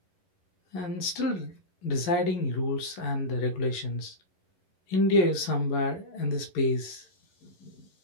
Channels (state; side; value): late; right; 11 ms